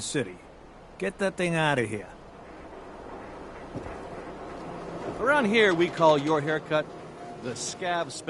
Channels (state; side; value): identical; both; correlation 1.00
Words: City. Get that thing out of here. Around here, we call your haircut the Scav